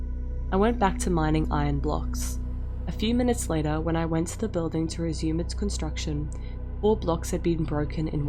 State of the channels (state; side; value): identical; both; correlation 1.00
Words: I went back to mining iron blocks. A few minutes later, when I went to the building to resume its construction, 4 blocks had been broken in